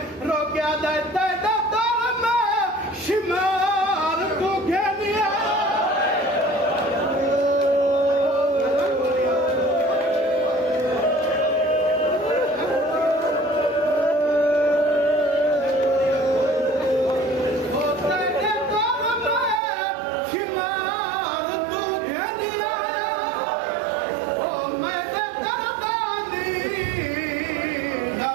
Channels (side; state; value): left; drops out; at 19.6 s